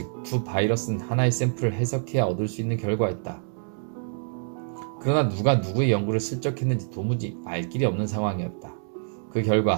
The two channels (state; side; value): silent; left; 58 dB below the other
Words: 두 바이러스는 하나의 샘플을 해석해야 얻을 수 있는 결과였다. 그러나 누가 누구의 연구를 슬쩍했는지 도무지 알 길이 없는 상황이었다. 그